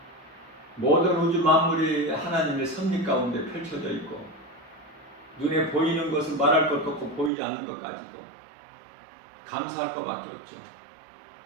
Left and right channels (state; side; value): drops out; left; at 7.3 s